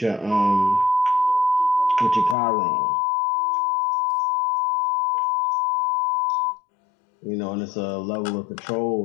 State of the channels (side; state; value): right; drops out; at 2.4 s